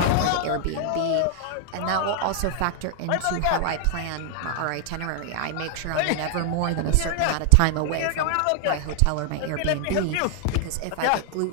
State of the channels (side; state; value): both; different; correlation 0.00